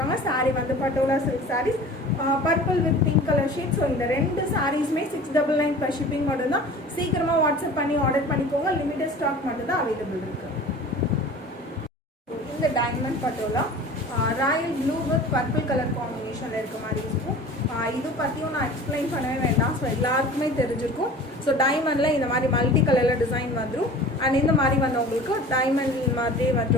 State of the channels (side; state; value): both; normal; correlation 0.41